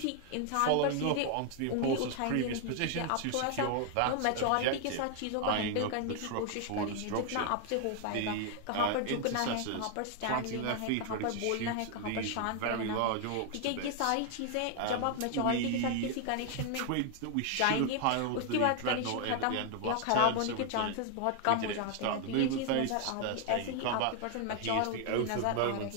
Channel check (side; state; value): both; different; correlation 0.00